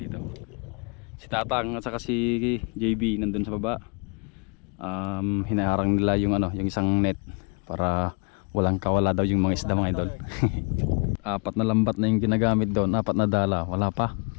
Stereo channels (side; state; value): right; quieter; 35.7 dB